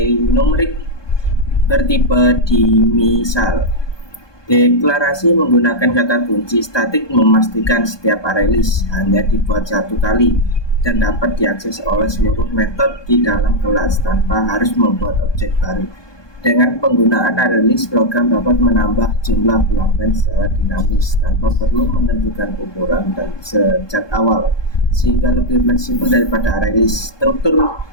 numerik bertipe dimisal. Deklarasi menggunakan kata kunci statik memastikan setiap array list hanya dibuat satu kali dan dapat diakses oleh seluruh metode di dalam kelas tanpa harus membuat objek baru. Dengan penggunaan array list, program dapat menambah jumlah pelanggan secara dinamis tanpa perlu menentukan ukuran dan sejak awal, sehingga lebih fleksibel daripada array list. Struktur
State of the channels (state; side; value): late; right; 1.2 ms